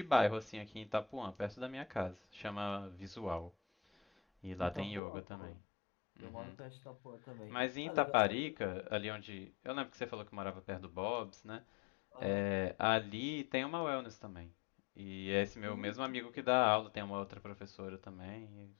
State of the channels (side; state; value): right; drops out; at 5.0 s